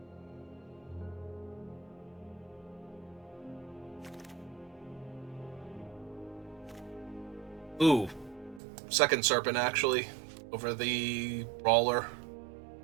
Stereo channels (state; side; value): drops out; left; at 8.6 s